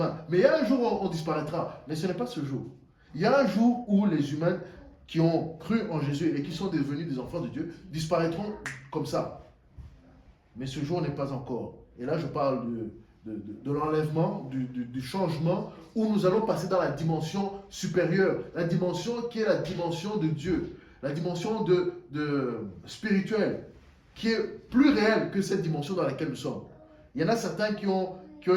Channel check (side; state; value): both; identical; correlation 1.00